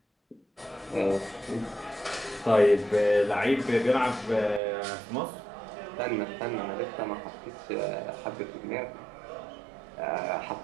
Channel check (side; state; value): left; drops out; at 4.6 s